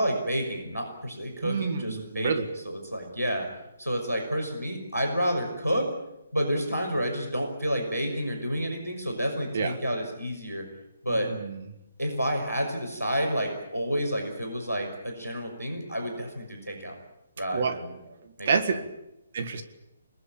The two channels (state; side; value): inverted; both; correlation -0.82